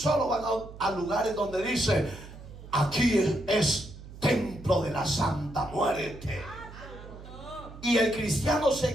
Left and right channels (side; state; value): right; noise; hum, 15 dB below the sound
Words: van a lugares donde dice: aquí es templo de la Santa Muerte. Y el cristiano